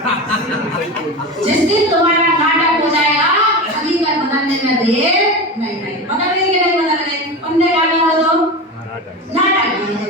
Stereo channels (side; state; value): both; normal; correlation 0.25